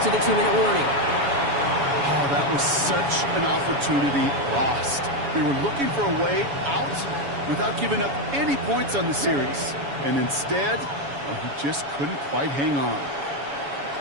to the 2-minute warning. Oh, that was such an opportunity lost. They were looking for a way out without giving up any points on the series. And instead, he just couldn't quite hang on.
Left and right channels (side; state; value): left; late; 7.1 ms